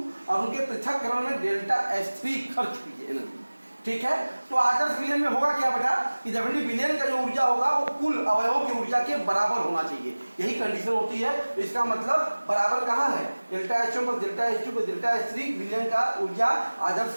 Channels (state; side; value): inverted; both; correlation -1.00